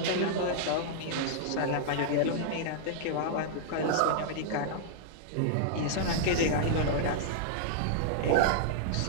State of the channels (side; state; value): both; different; correlation -0.01